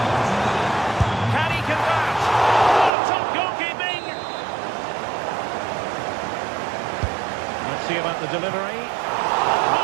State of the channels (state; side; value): drops out; left; at 2.9 s